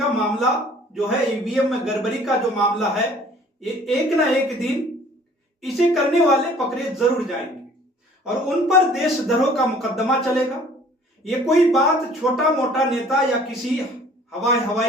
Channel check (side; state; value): both; normal; correlation 0.53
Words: मामला जो है, ईवीएम में गड़बड़ी का जो मामला है, ये एक ना एक दिन इसे करने वाले पकड़े जरूर जाएंगे और उन पर देशद्रोह का मुकदमा चलेगा। ये कोई बात छोटा मोटा नेता या किसी